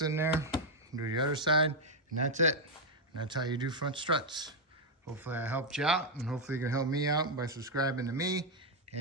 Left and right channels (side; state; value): both; normal; correlation 0.01